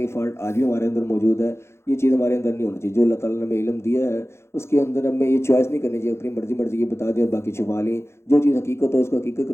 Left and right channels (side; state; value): right; late; 0.13 ms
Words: فالٹ آج بھی ہمارے اندر موجود ہے، یہ چیز ہمارے اندر نہیں ہونی چاہیے، جو اللہ تعالیٰ نے ہمیں علم دیا ہے اس کے اندر ہمیں یہ چوائس نہیں کرنی چاہیے، اپنی مرضی یہ بتا دیں اور باقی چھپا لیں، جو چیز حقیقت ہو اس کو حقیقت کے